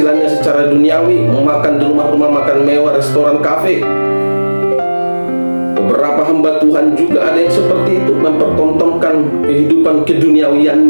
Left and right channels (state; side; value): inverted; both; correlation -1.00